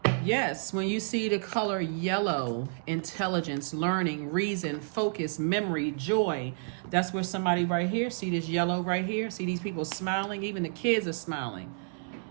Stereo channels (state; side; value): silent; left; digital silence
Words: Yes, when you see the color yellow, intelligence, learning, reason, focus, memory, joy. That's where somebody right here, see this yellow right here? See these people smiling? Even the kids are smiling.